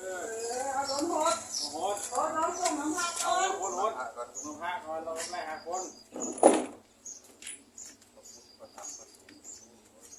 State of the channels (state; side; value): identical; both; correlation 1.00